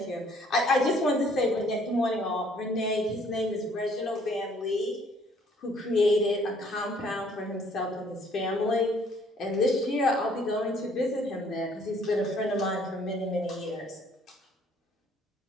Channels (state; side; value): normal; both; correlation 0.61